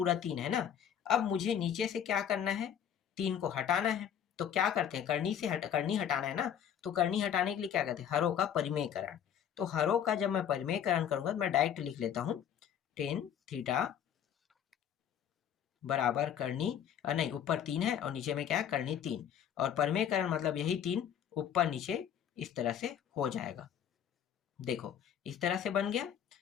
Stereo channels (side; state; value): right; quieter; 9.1 dB